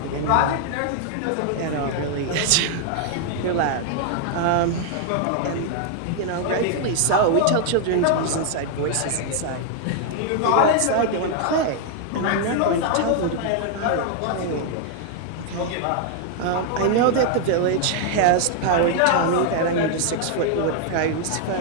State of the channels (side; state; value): both; different; correlation 0.00